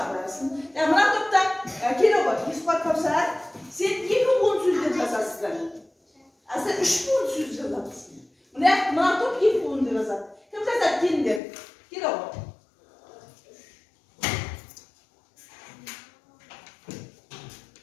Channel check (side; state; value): right; drops out; at 11.4 s